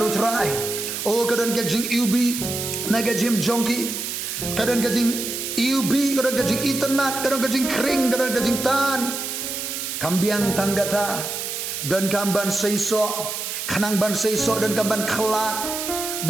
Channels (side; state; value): right; noise; hiss, 4 dB below the sound